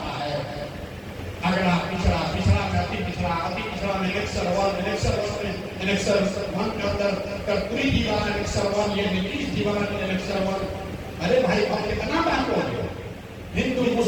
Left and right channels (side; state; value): both; identical; correlation 1.00